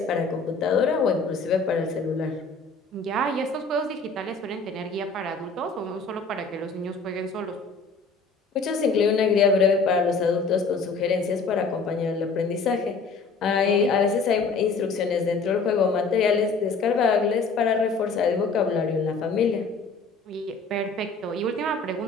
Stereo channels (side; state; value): right; quieter; 4.2 dB